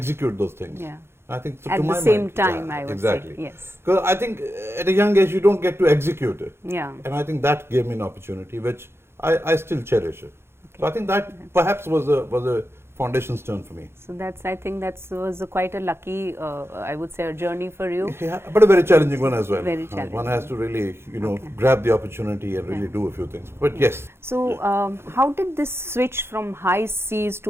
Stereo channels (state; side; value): late; left; 0.12 ms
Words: those things. Yeah. I think so, At the same time, I would exactly. say. Yes. Because I think at a young age you don't get to execute it. Yeah. And I think that gave me an opportunity which I still cherish. Okay. So I think that perhaps was a foundation stone for me. So I think that was quite a lucky, I would say, a journey for you. Yeah, but a very challenging one as well. Very challenging. One has to really, grab the opportunity and really do a few things. But yes. So how did this switch from high seas